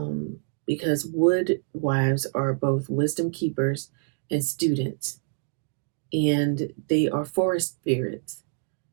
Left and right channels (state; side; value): silent; left; digital silence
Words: because wood wives are both wisdom keepers and students, and they are forest spirits,